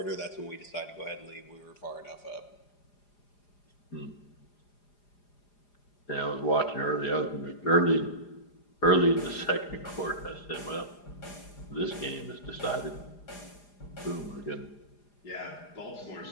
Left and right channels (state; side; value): late; right; 4.9 ms